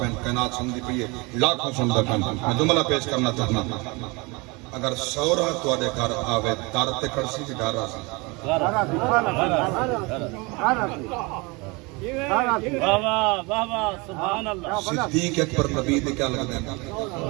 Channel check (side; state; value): left; quieter; 27.0 dB